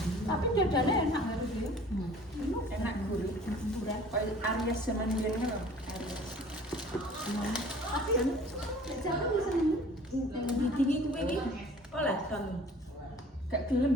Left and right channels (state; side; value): normal; both; correlation 0.49